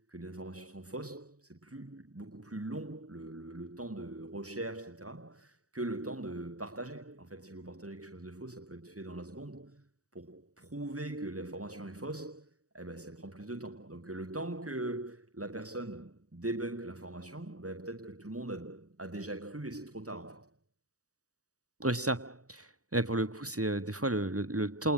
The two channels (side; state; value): left; late; 0.66 ms